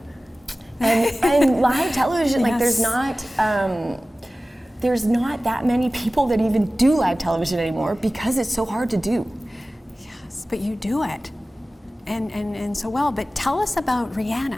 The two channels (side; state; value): both; normal; correlation 0.97